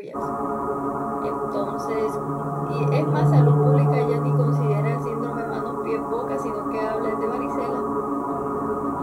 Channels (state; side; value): identical; both; correlation 1.00